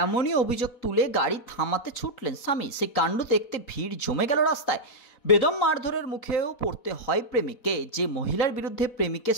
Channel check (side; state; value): right; late; 4.1 ms